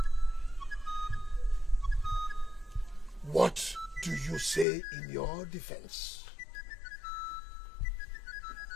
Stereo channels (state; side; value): drops out; right; at 4.7 s